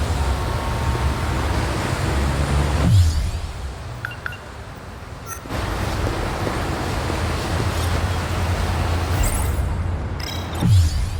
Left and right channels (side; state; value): both; identical; correlation 1.00